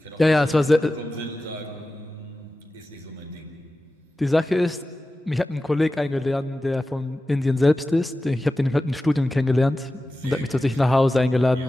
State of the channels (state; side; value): normal; both; correlation 0.94